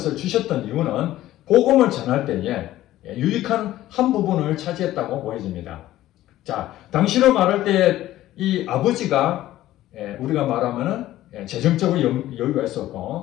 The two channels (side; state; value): right; quieter; 14.6 dB